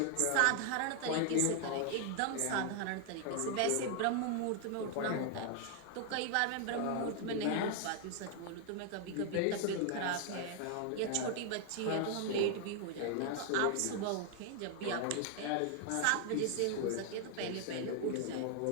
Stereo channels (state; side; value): different; both; correlation 0.00